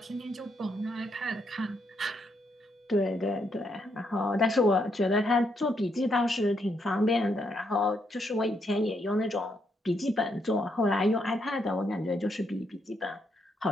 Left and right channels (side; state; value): both; normal; correlation 0.77